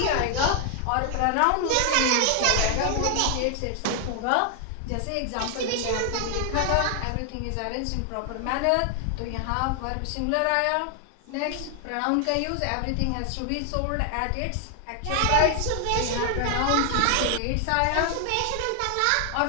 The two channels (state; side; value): different; both; correlation 0.00